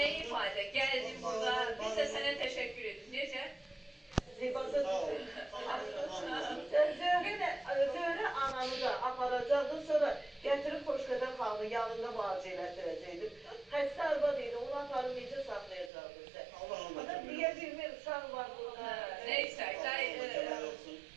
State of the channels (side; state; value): left; drops out; at 15.9 s